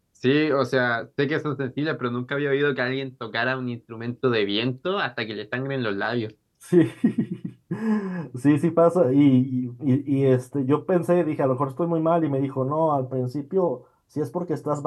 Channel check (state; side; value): identical; both; correlation 1.00